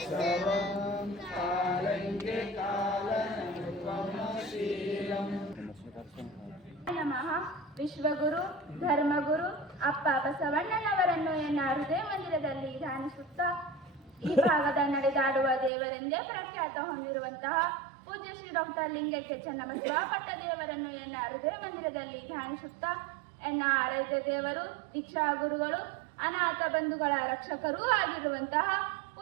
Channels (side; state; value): left; drops out; at 15.7 s